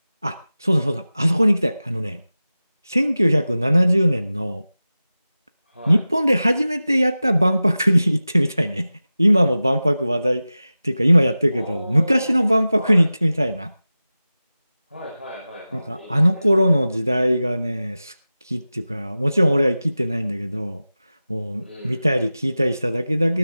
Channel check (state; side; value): inverted; both; correlation -0.96